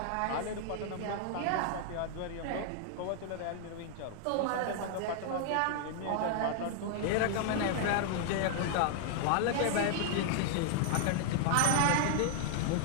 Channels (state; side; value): different; both; correlation 0.00